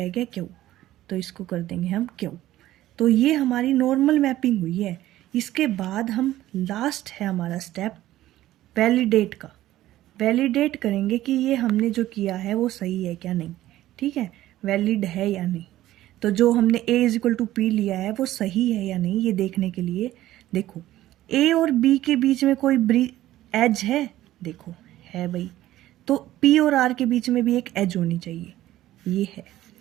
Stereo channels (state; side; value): quieter; left; 14.7 dB